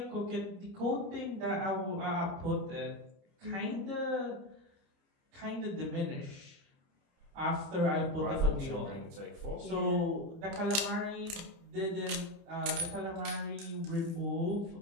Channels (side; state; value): left; late; 29 ms